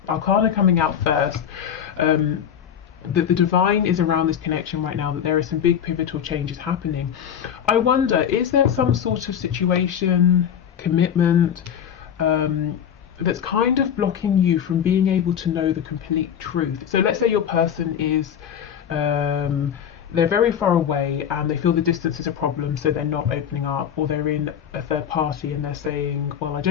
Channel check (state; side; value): quieter; right; 8.7 dB